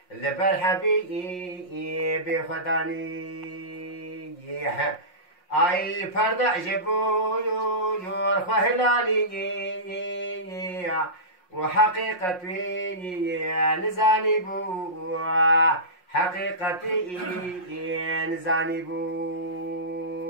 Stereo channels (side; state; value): right; late; 5.6 ms